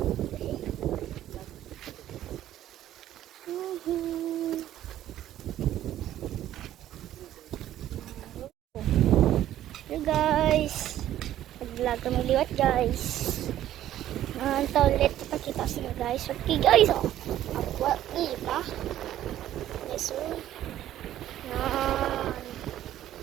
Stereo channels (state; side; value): quieter; left; 12.6 dB